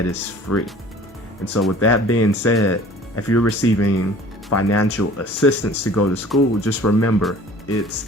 is free. And so with that being said, if you're receiving financial assistance to go to school, just remember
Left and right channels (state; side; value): normal; both; correlation 0.48